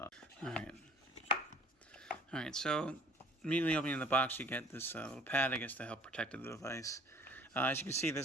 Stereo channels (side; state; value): both; normal; correlation 0.52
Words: Alright, so immediately opening the box, you get this little pad, I guess, to help protect the device. As you can see,